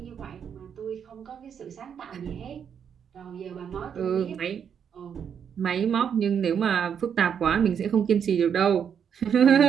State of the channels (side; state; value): left; quieter; 7.8 dB